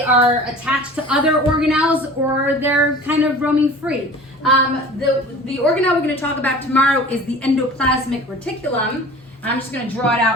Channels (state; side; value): normal; both; correlation 0.42